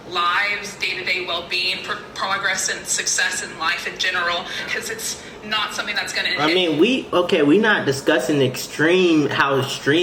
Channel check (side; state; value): both; identical; correlation 1.00